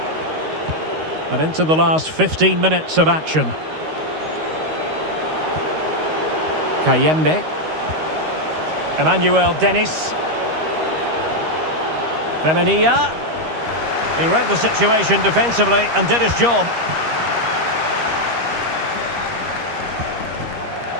And into the last 15 minutes of action. Kayembe. Emmanuel Dennis. Femenia. He read the situation defensively and did his job.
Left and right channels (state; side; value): late; left; 13 ms